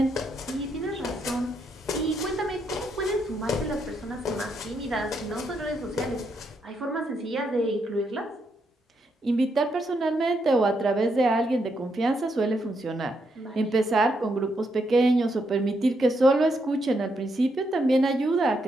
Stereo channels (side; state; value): both; normal; correlation 0.79